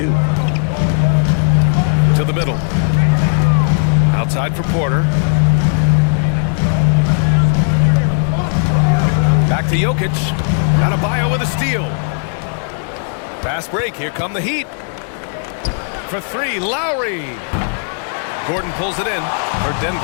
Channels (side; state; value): right; silent; 64 dB below the other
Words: To the middle. Outside for Porter. Back to Jokic. Adebayo with a steal. Fast break. Here come the Heat. For 3, Lowry. Gordon pulls it in. For